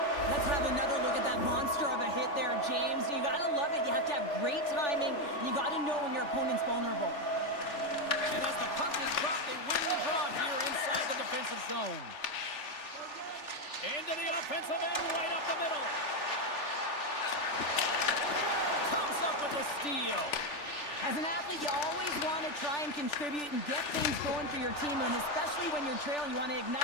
Let's have another look at that monster of a hit there, James. You gotta love it. You have to have great timing. You gotta know when your opponent's vulnerable. And as the puck is dropped, they win the draw here inside the defensive zone. Into the offensive end, right up the middle. Comes up with the steal. As an athlete, you always want to try and contribute and get things going for your team, and especially when you're trailing, you want to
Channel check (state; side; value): late; right; 3.4 ms